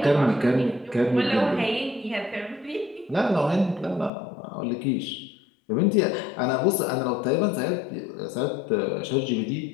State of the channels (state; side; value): drops out; right; at 4.1 s